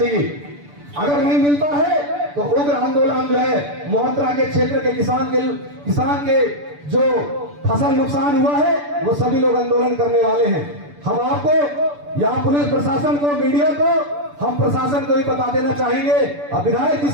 अगर नहीं मिलता है तो उग्र आंदोलन जो है मोहत्रा के क्षेत्र के किसान के जो फसल नुकसान हुआ है वो सभी लोग आंदोलन करने वाले हैं। हम आपको, यहाँ पुलिस प्रशासन को, मीडिया को, हम प्रशासन को भी बता देना चाहेंगे, और विधायक जी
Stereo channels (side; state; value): left; late; 6.9 ms